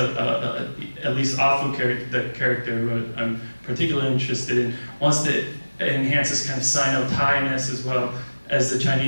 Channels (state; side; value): inverted; both; correlation -1.00